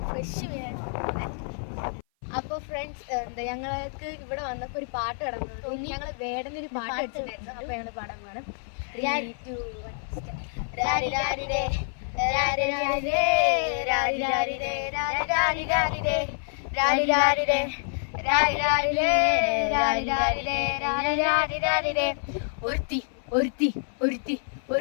ഫ്രഷ് മീൻ. അപ്പോൾ ഫ്രണ്ട്സ് ഞങ്ങൾക്ക് ഇവിടെ വന്നപ്പോൾ ഒരു പാട്ട് കിടന്നു. ഞങ്ങൾ വേടനൊരു പാട്ട് വെച്ചിട്ടുണ്ടായിരുന്നു. അപ്പോൾ ഞങ്ങൾ പാടാൻ പോകണം.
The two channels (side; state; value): right; silent; 56 dB below the other